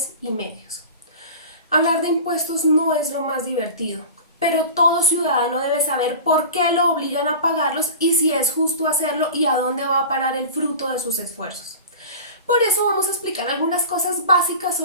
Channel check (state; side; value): inverted; both; correlation -0.35